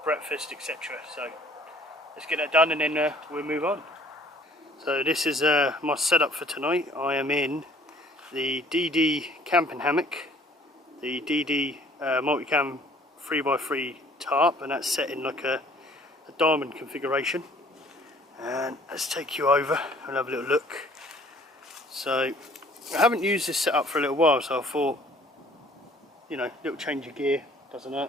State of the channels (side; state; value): both; normal; correlation 0.56